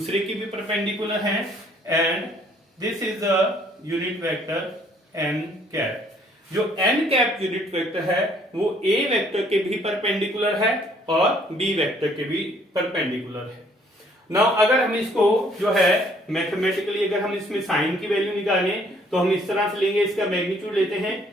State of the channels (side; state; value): both; normal; correlation 0.62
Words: के भी परपेंडिकुलर हैं and this is a unit vector n cap. जो n cap यूनिट वेक्टर है वो a वेक्टर के भी परपेंडिकुलर है और b वेक्टर के भी परपेंडिकुलर है। नाउ अगर हम इसको जो है मैथमेटिकली अगर हम इसमें साइन की वैल्यू निकालें तो हम इस तरह से लेंगे, इसका मैग्नीट्यूड लेते हैं